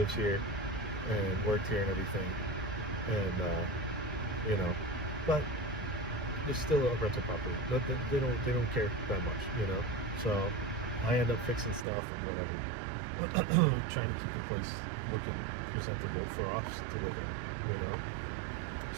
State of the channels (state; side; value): drops out; left; at 11.9 s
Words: here and worked here and everything, and but it's still a rental property. They don't care that much, So I end up fixing stuff and whatever, trying to keep the place looking presentable for us to live in,